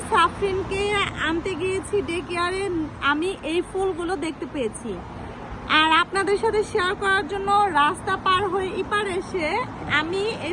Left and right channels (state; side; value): identical; both; correlation 1.00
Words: সাফরিনকে আনতে গিয়েছি ডে কেয়ারে। আমি এই ফুলগুলো দেখতে পেয়েছি আর আপনাদের সাথে শেয়ার করার জন্য রাস্তা পার হয়ে এপার এসে আমি